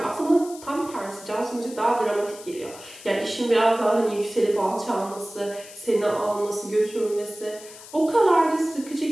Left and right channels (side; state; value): left; noise; hiss, 17 dB below the sound